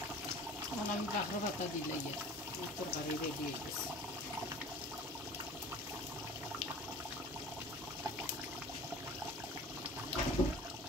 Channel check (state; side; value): normal; both; correlation 0.43